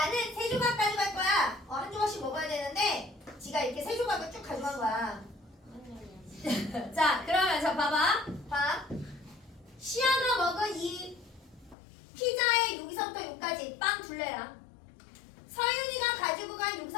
3조각 가져갈 거야. 한 조각씩 먹어야 되는데 지가 이렇게 3조각을 쭉 가져간 거야. 자, 그러면서 봐봐. 봐. 6까지 빵 둘레랑 서윤이가 가지고 간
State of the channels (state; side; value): drops out; right; at 11.8 s